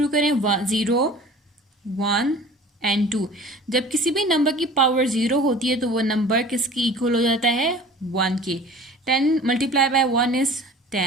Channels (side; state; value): both; normal; correlation 0.43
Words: करें, 0 1 एंड 2। जब किसी भी नंबर की पावर 0 होती है तो वो नंबर किसकी इक्वल हो जाता है, 1 के। 10 multiply by 1 is